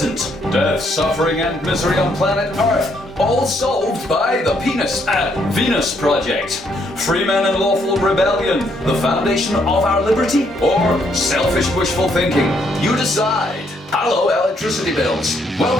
Death, suffering and misery on planet Earth, all solved by the Venus Project. Free men and lawful rebellion, the foundation of our liberty, or selfish wishful thinking? You decide. Hello, electricity bills.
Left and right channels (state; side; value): normal; both; correlation 0.72